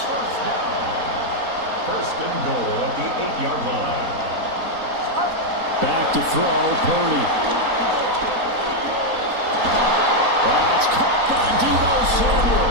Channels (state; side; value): late; left; 4.0 ms